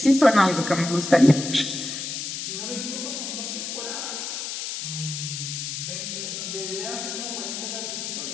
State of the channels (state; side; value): noise; left; hiss, 5 dB below the sound